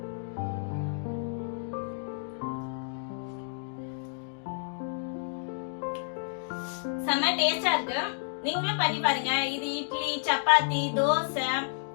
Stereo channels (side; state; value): right; silent; digital silence